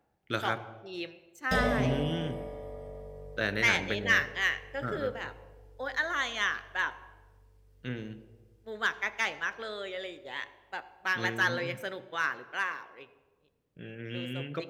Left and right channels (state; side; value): identical; both; correlation 1.00